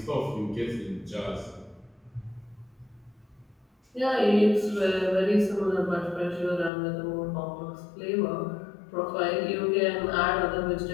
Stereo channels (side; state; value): right; drops out; at 6.7 s